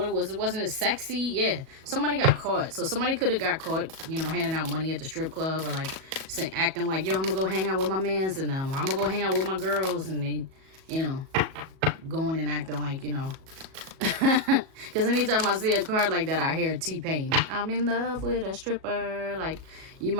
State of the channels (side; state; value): left; late; 37 ms